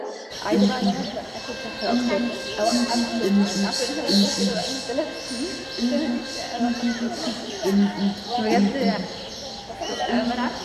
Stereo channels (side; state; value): both; identical; correlation 1.00